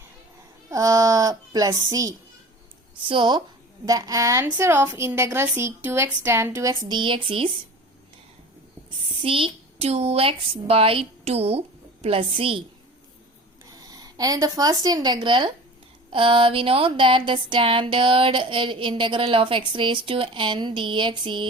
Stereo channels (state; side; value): normal; both; correlation 0.39